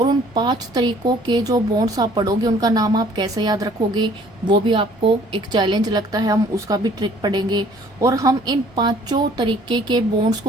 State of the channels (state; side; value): noise; right; rumble, 29 dB below the sound